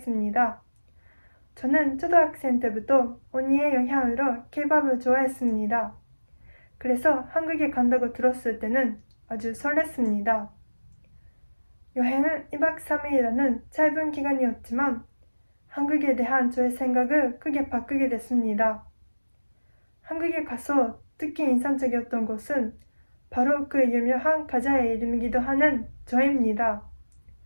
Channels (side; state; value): both; inverted; correlation -1.00